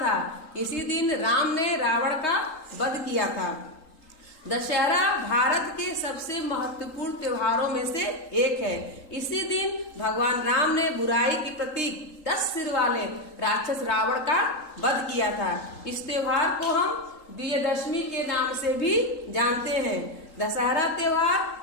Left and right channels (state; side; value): late; right; 3.8 ms